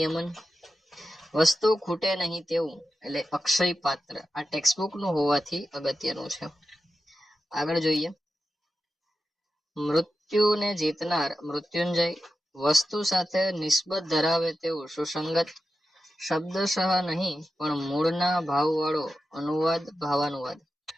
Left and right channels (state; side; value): normal; both; correlation 0.91